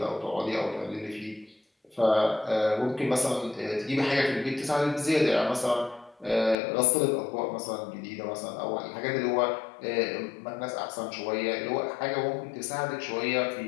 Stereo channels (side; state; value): right; drops out; at 6.6 s